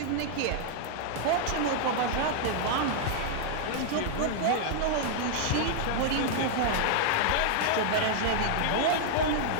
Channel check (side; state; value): both; different; correlation -0.01